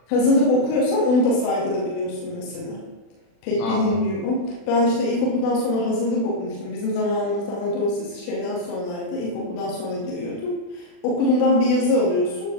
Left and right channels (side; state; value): right; late; 40 ms